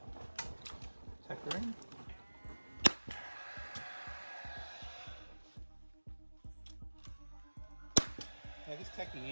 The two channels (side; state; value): both; inverted; correlation -1.00